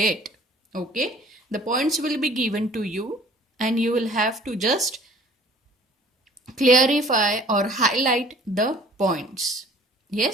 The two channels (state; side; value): normal; both; correlation 0.51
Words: Okay? The points will be given to you and you will have to just clarify or highlight the points.